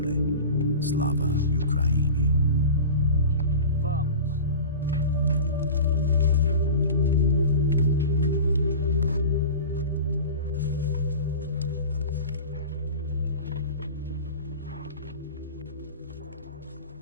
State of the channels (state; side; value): inverted; both; correlation -0.33